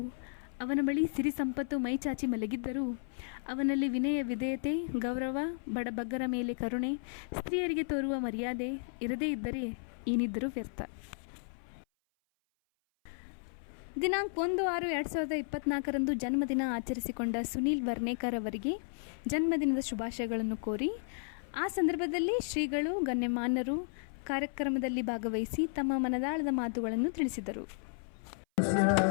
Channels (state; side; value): silent; right; 55 dB below the other